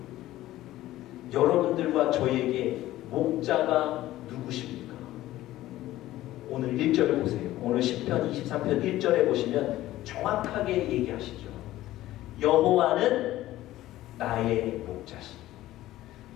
여러분들과 저에게 목자가 누구십니까? 오늘 1절을 보세요. 오늘 10편 23편 1절에 보시면 정확하게 얘기하시죠. 여호와는 나의 목자시니.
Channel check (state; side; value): quieter; right; 15.3 dB